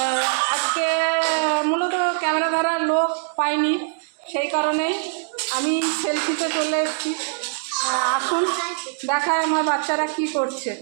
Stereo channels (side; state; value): left; silent; digital silence